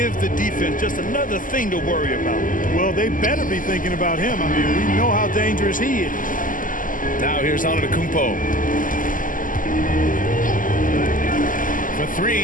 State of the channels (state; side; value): late; right; 0.39 ms